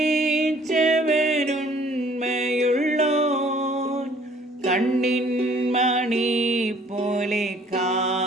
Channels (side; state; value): both; normal; correlation 0.58